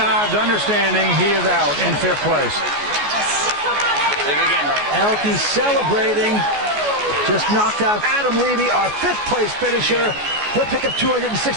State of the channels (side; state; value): left; late; 14 ms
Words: understanding he is out in 5th place. Elke celebrating. Just knocked out Adam Levy, our 5th place finisher. He'll pick up